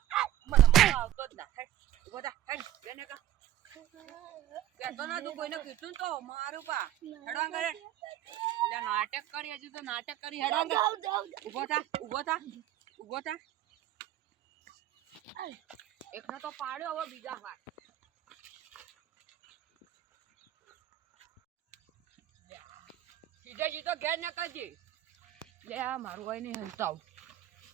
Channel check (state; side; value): quieter; left; 12.9 dB